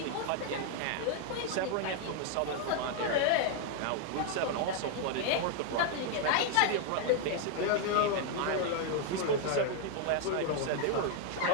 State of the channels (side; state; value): both; different; correlation 0.00